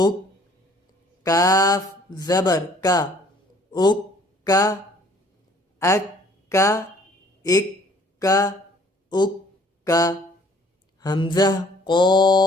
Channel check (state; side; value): normal; both; correlation 0.57